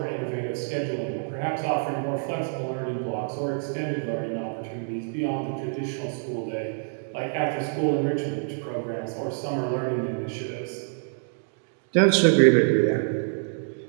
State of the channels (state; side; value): silent; left; digital silence